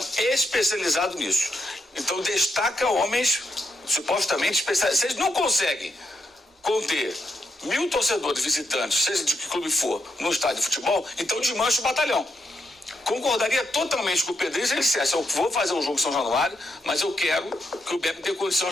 especializado nisso. Então destaca homens supostamente especializados. Vocês não conseguem conter 1.000 torcedores visitantes, seja de que clube for, no estádio de futebol, então desmancha o batalhão. Concordaria totalmente com o Pedrinho se ele dissesse, eu vou fazer um jogo em São Januário, mas eu quero que o BEP tenha condição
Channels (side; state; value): both; normal; correlation 0.81